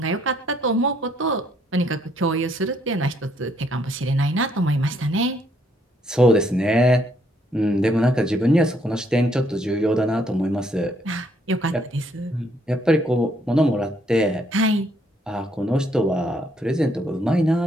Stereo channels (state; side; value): normal; both; correlation 0.70